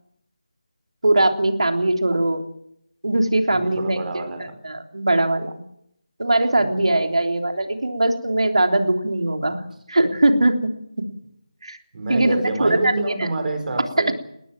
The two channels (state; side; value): inverted; both; correlation -0.93